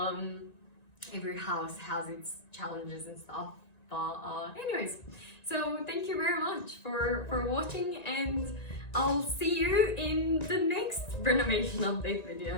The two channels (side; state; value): right; late; 1.9 ms